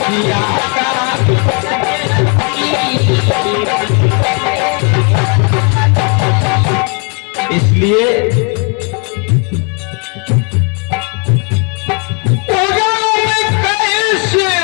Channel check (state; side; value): quieter; right; 36.6 dB